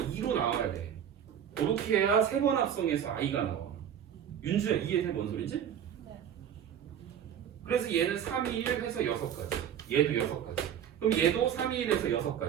나와야 돼. 그렇게 해야 세 번 합성해서 i가 나와. 윤주야 이해돼 뭔 소리지? 네. 그래서 얘는 3, 2, 1 해서 6가지. 얘도 6가지. 그럼 얘도 3, 2, 1 해서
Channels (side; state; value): left; quieter; 9.1 dB